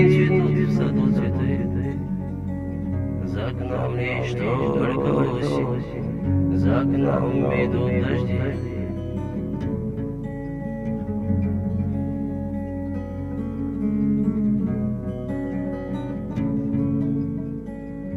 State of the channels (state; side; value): identical; both; correlation 1.00